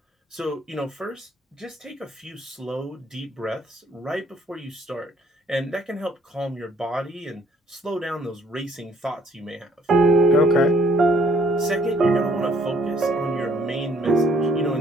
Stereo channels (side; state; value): both; normal; correlation 0.64